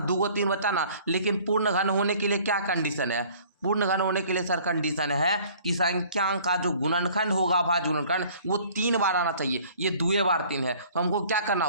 2 को 3 बच्चा ना, लेकिन पूर्ण घन होने के लिए क्या कंडीशन है? पूर्ण घन होने के लिए सर कंडीशन है कि संख्या का जो गुणनखंड होगा अभाज्य गुणनखंड वो 3 बार आना चाहिए। ये 2 बार 3 है, तो हमको क्या करना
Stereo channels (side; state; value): both; inverted; correlation -0.52